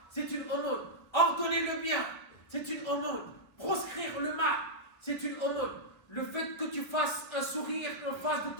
c'est une aumône. Ordonner le bien, c'est une aumône. Proscrire le mal, c'est une aumône. Le fait que tu fasses un sourire en face de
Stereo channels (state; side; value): late; right; 1.3 ms